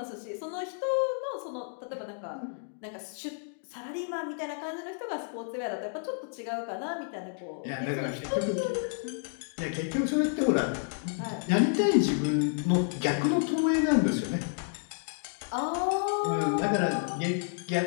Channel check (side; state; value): right; silent; digital silence